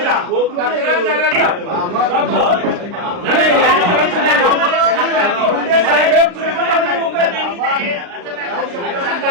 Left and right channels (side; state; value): left; late; 39 ms